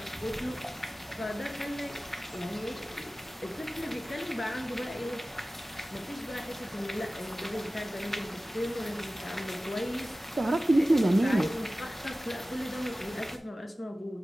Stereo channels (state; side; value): normal; both; correlation 0.96